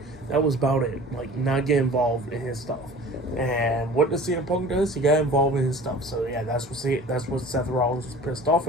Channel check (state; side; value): normal; both; correlation 0.42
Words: That was about it. Like, not get involved in his stuff. And what does CM Punk does? He got involved in his stuff. So yeah, that's what Seth Rollins was pissed off